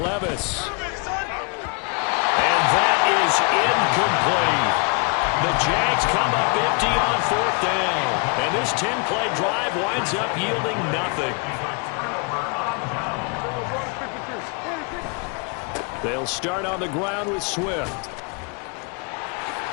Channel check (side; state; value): right; quieter; 34.4 dB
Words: Levis. And that is incomplete. The Jags come up empty on 4th down. And this 10-play drive winds up yielding nothing. They'll start on the ground with Swift.